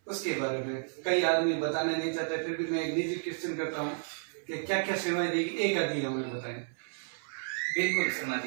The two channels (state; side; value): silent; left; 57 dB below the other